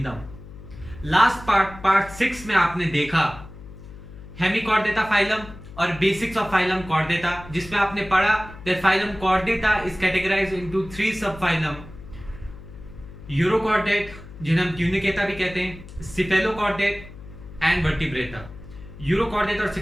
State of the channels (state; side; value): noise; left; hum, 16 dB below the sound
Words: Last part 6 में आपने देखा हेमिकॉर्डेटा फाइलम और बेसिक्स ऑफ फाइलम कॉर्डेटा, जिसमें आपने पढ़ा that phylum chordata is categorised into 3 sub phylum. Urochordate, जिन्हें हम ट्यूनिकेटा भी कहते हैं, सिफेलोकॉर्डेट एंड वर्टिब्रेटा. यूरोकॉर्डेट और